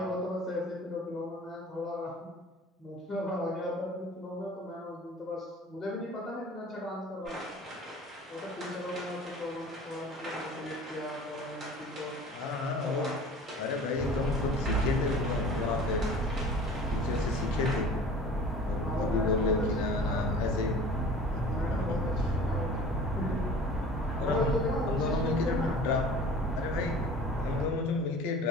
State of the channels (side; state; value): both; normal; correlation 0.43